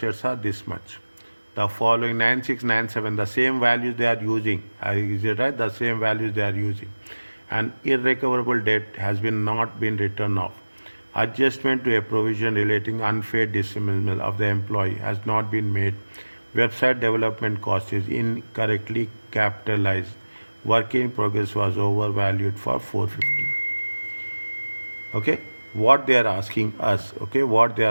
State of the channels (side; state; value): both; inverted; correlation -1.00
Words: are this much. The following 9697, the same values they are using. Is it right? The same values they are using. And irrecoverable debt has not been written off. Adjustment to a provision relating unfair dismissal of the employee has not been made. Website development cost is incorrectly capitalized. Work in progress was overvalued for 450. Okay, what they are asking us, okay, what they